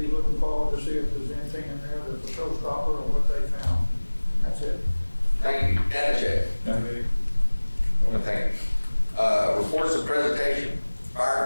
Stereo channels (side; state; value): both; inverted; correlation -1.00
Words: looking forward to see if there's anything in there that's a showstopper or what they found. That's it. Thank you. Danachek. Thank you. Reports of presentation.